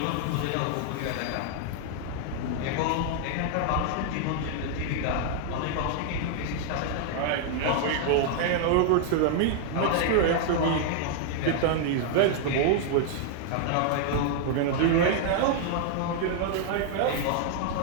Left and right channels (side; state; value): both; different; correlation 0.00